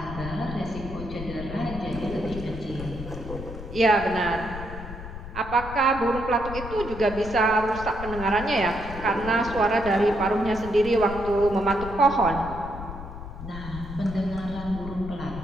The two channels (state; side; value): noise; left; rumble, 10 dB below the sound